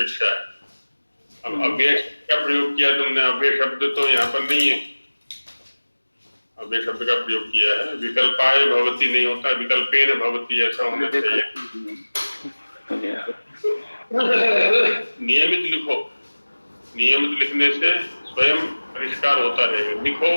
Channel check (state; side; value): inverted; both; correlation -1.00